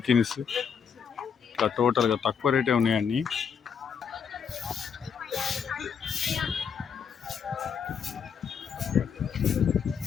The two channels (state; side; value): quieter; right; 6.9 dB